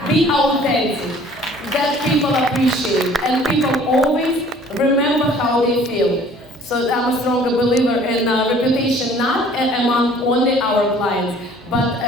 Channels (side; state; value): both; normal; correlation 0.53